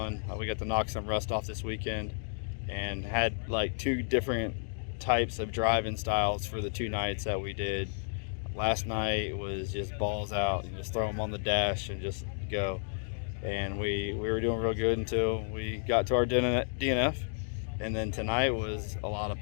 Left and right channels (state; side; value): silent; right; digital silence